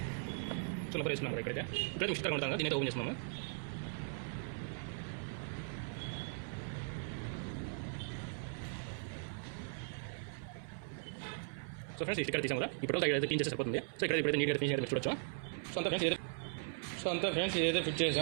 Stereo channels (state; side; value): silent; left; 52 dB below the other